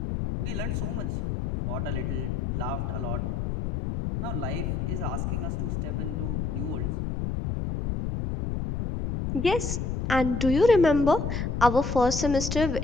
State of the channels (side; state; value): left; noise; rumble, 2 dB below the sound